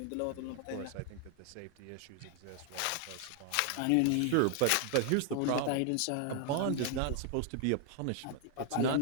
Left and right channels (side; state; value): both; different; correlation 0.00